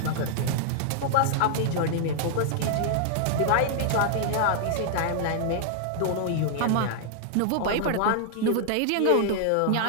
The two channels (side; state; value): both; different; correlation -0.01